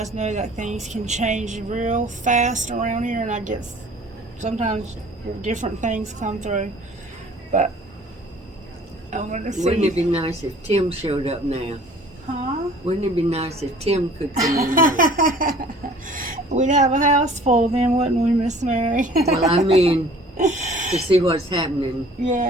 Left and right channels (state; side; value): normal; both; correlation 0.51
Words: know that things can change real fast around here, and I get sometimes different things come through. But I want to see. Wouldn't it be nice if Tim showed up now? Huh? Wouldn't it be nice if Tim could come in now? We'd have a house full then, wouldn't we, Miss Mary? Well, I mean, to see what's happening.